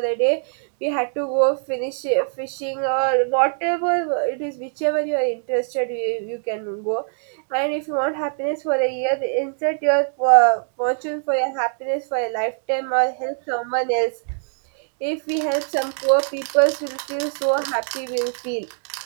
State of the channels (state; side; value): silent; left; digital silence